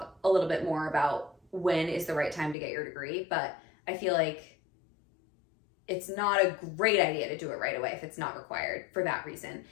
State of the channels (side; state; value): right; drops out; at 2.6 s